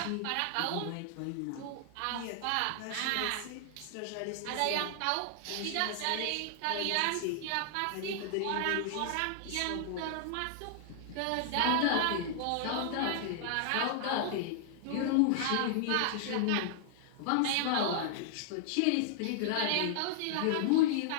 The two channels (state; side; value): different; both; correlation -0.01